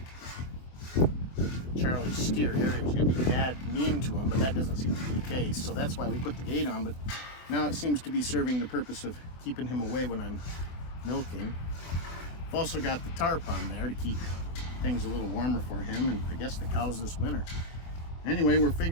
Charlie's steer, Harry, was going to be mean to him, but that doesn't seem to be the case, so that's why we put the gate on. But now it seems to be serving the purpose of keeping him away when I'm milking. I've also got the tarp on there to keep things a little warmer for him and I guess the cows this winter. Anyway, we're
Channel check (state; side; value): late; right; 24 ms